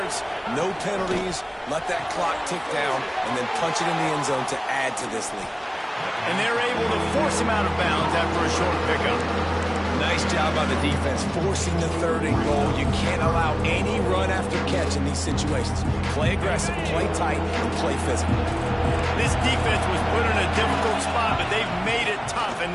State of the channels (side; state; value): both; identical; correlation 1.00